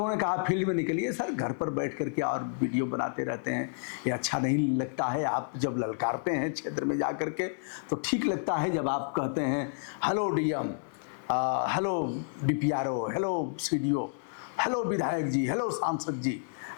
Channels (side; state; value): right; silent; digital silence